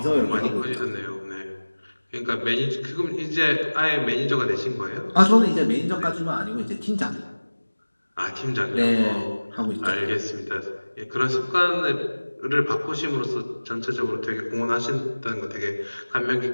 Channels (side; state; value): both; inverted; correlation -1.00